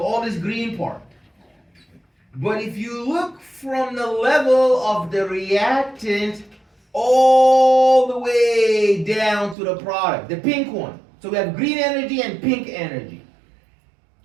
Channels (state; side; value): drops out; left; at 9.6 s